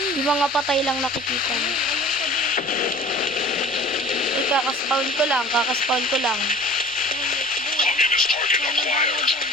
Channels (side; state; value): both; normal; correlation 0.44